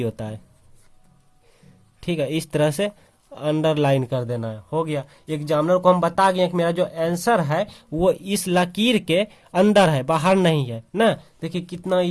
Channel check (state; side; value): identical; both; correlation 1.00